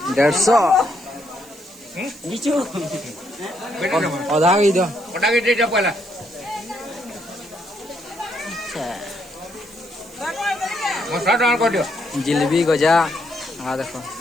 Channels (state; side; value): noise; right; hiss, 22 dB below the sound